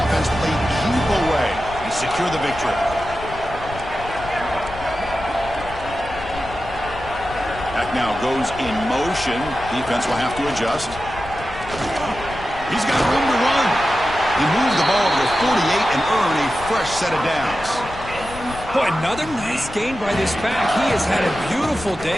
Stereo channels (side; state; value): left; noise; rumble, 14 dB below the sound